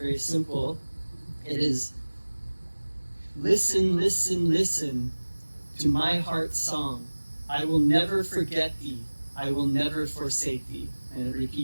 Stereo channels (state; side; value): inverted; both; correlation -1.00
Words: simple. It is, listen, listen, listen to my heart's song. I will never forget thee. I will never forsake thee. And it